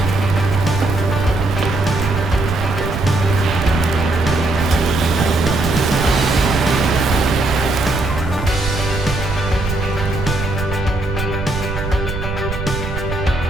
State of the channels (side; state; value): right; noise; rumble, 6 dB below the sound